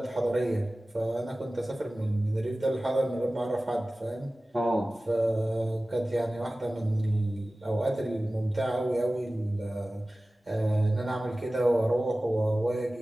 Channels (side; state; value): both; normal; correlation 0.97